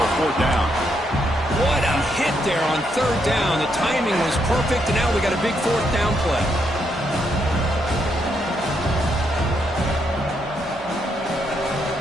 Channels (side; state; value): both; normal; correlation 0.77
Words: 4th down. What a hit there on 3rd down. The timing was perfect, and now we got a big 4th down play.